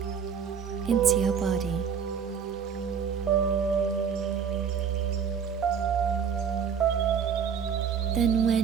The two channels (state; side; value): quieter; left; 7.1 dB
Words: into your body. Then